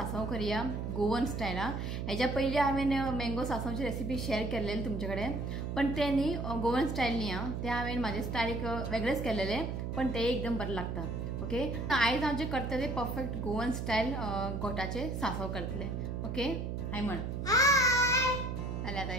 करूया गोवन स्टाईल। हेच्या पयलीं हांवें मँगो सांसवची रेसिपी शेअर केल्लेली तुमचे कडेन, पण ते न्ही गोवन स्टाईल न्ही ते हांवें म्हाजे स्टाईल एक वेगळेच केल्लेले, पण ते एकदम बरें लागता। ओके, आयज हांव जे करतले परफेक्ट गोवन स्टाईल गोठाचे सांसव करतले। ओके, हाय म्हण हाय। अरे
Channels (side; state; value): right; noise; hum, 3 dB below the sound